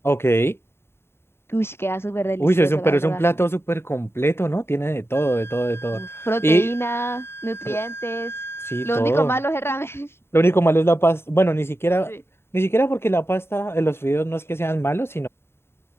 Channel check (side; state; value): right; late; 0.12 ms